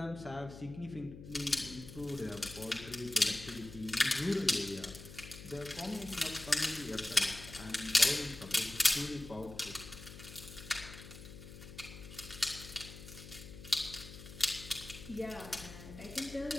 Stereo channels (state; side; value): noise; left; hum, 14 dB below the sound